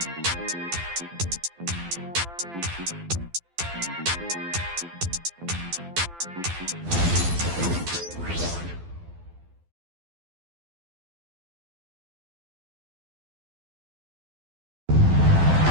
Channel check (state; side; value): late; left; 12 ms